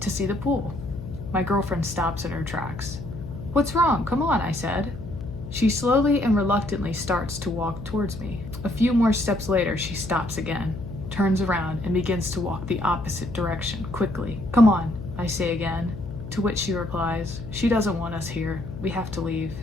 to see the pool. My girlfriend stops in her tracks. "What's wrong? Come on," I said. She slowly and reluctantly starts to walk towards me. A few more steps later, she stops again, turns around, and begins to walk the opposite direction, quickly. "Come on," I say again. To which she replies, "She doesn't want us here. We have to leave."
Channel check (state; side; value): noise; left; hum, 10 dB below the sound